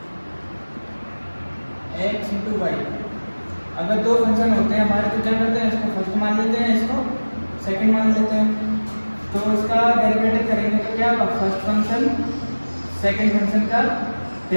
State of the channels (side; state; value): both; inverted; correlation -1.00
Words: x इंटू वाई। अगर दो फंक्शन होते हैं हमारे तो क्या करते हैं, इसको फर्स्ट मान लेते हैं, इसको सेकंड मान लेते हैं। तो इसका डेरिवेटिव करेंगे तो क्या होगा, फर्स्ट फंक्शन सेकंड फंक्शन का